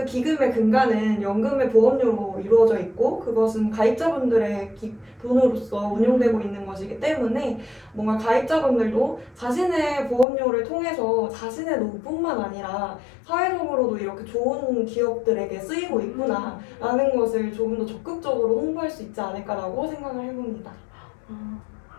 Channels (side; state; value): right; drops out; at 10.2 s